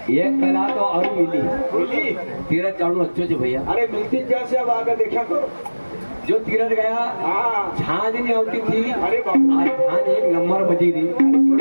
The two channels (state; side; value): inverted; both; correlation -1.00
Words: ये कला तो और मिली तीरथ जाऊँ अच्छे जो भैया। अरे मिलती जैसे अब आकर देखा करो जो तीरथ गया हाँ झांझ नहीं होती थी, अरे बाबा आज झांझ 1 नंबर बजी थी।